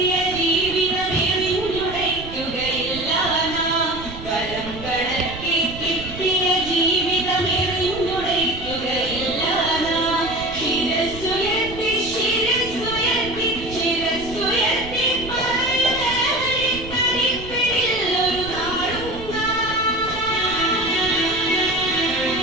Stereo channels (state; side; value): noise; right; rumble, 12 dB below the sound